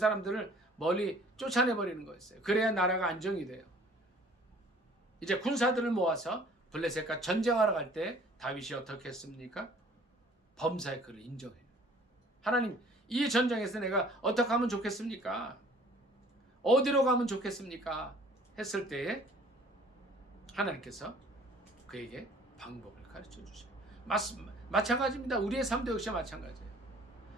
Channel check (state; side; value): normal; both; correlation 0.53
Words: 멀리 쫓아내 버리는 거였어요. 그래야 나라가 안정이 돼요. 이제 군사들을 모아서 블레셋과 전쟁하러 갈 때 다윗이 어떻게 했습니까? 범사의 그를 인정해요. 하나님, 이 전쟁에서 내가 어떻게 하면 좋겠습니까? 어디로 가면 좋겠습니까? 했을 때에 하나님께서 그에게 방법을 가르쳐 주셔요. 마찬가지입니다. 우리의 삶도 역시 마찬가지예요.